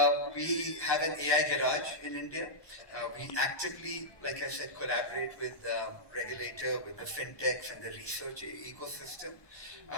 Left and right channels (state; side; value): late; right; 1.2 ms